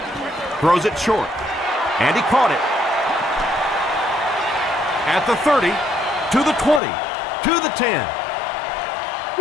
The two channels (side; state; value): right; drops out; at 6.8 s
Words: Throws it short. And he caught it. At the 30, to the 20, to the 10.